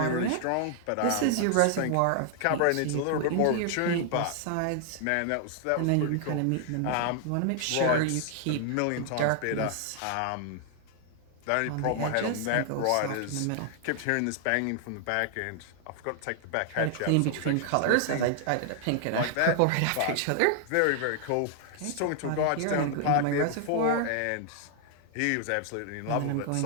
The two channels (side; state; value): both; different; correlation 0.00